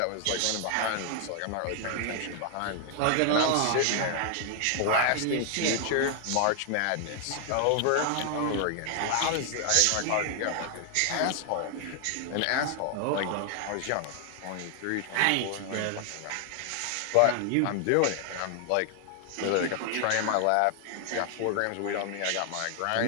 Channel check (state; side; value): different; both; correlation 0.00